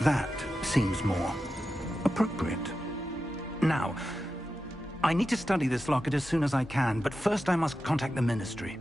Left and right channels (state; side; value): normal; both; correlation 0.91